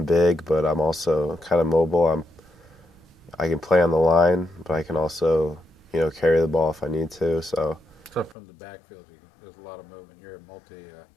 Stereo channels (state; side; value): drops out; right; at 8.3 s